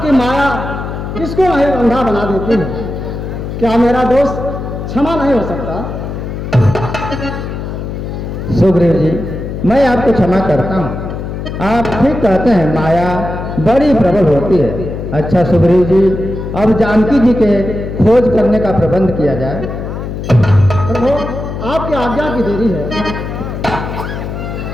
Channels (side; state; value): left; noise; hum, 6 dB below the sound